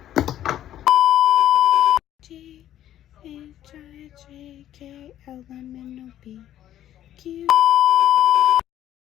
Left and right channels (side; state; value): right; quieter; 11.9 dB